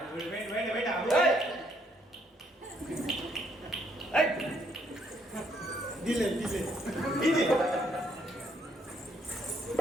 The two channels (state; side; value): normal; both; correlation 0.72